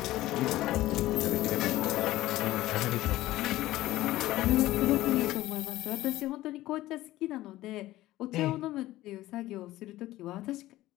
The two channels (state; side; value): quieter; right; 16.3 dB